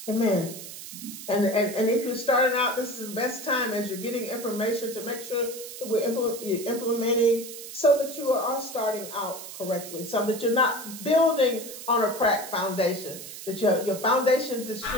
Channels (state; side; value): noise; right; hiss, 12 dB below the sound